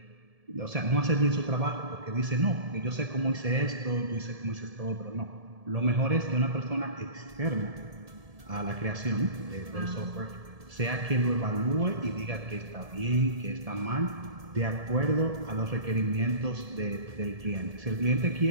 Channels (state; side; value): late; left; 1.7 ms